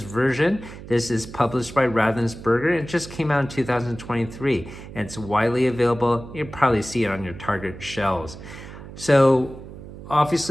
This is published by Ravensburger. It just came out in 2023, and it's widely available. You'll probably see it on your Target shelves. So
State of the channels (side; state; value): right; noise; hum, 14 dB below the sound